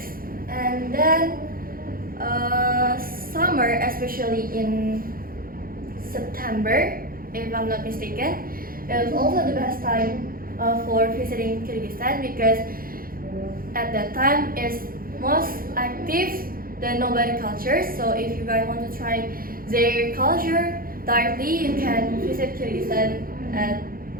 And then summer, especially in September, if I'm not mistaken, is also the best time for visiting Kyrgyzstan because at that time it's most active the nomadic culture. So if you guys want to try their culture directly, you can visit Kyrgyzstan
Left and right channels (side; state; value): left; late; 0.42 ms